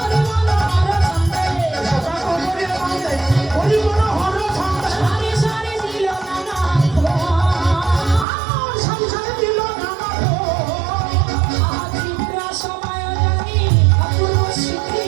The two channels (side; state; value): left; drops out; at 8.2 s